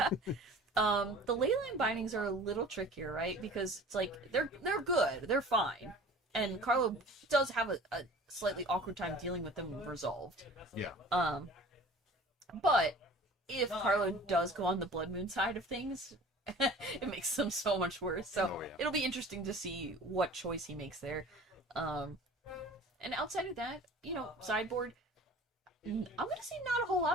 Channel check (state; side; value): normal; both; correlation 0.44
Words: The leyline bindings are a little trickier, right? Because it's like they're good, they're fine, and Carlo does have a slightly awkward time dealing with them resolved. Yeah. But if Carlo does go on the Blood Moon side of things, it makes them so much worse. So Oh, yeah. it'll be interesting to see what choice he makes there. And outside of that, you know, sideboard. I'm gonna say not a whole